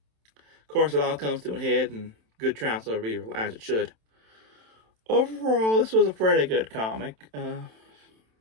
Of course, it all comes to a head, and good triumphs over evil, as it should. Overall, this was a pretty good comic. Well,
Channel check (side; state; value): left; late; 27 ms